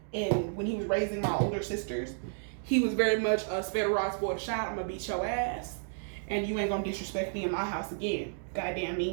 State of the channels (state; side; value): silent; left; digital silence